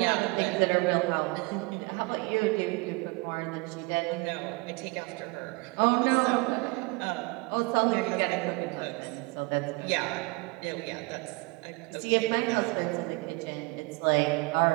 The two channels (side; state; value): left; quieter; 27.1 dB